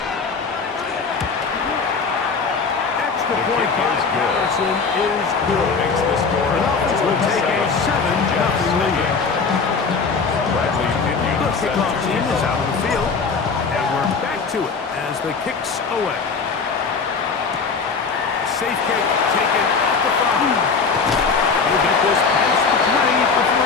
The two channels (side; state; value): right; quieter; 5.0 dB